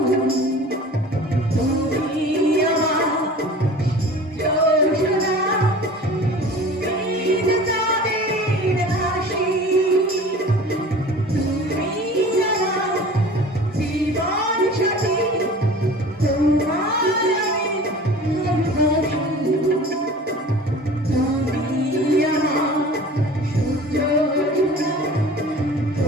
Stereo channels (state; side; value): normal; both; correlation 0.41